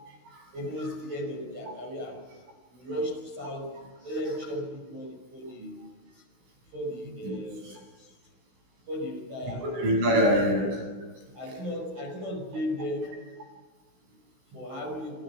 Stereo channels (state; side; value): late; left; 16 ms